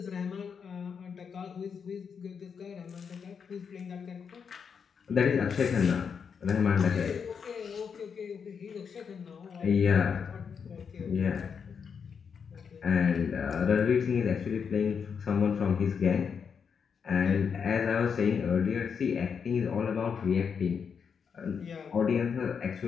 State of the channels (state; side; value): quieter; right; 6.5 dB